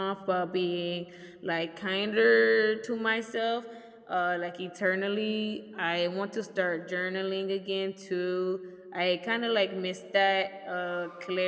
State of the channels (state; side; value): identical; both; correlation 1.00